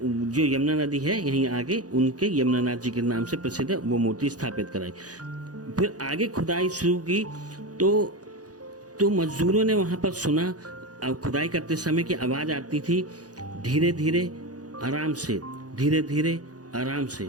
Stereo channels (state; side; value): late; left; 0.68 ms